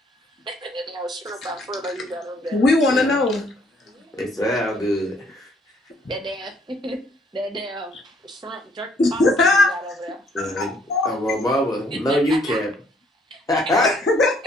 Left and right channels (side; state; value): both; normal; correlation 0.65